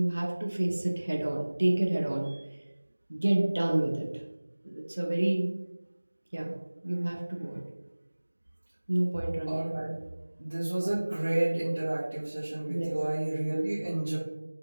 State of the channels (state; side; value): inverted; both; correlation -1.00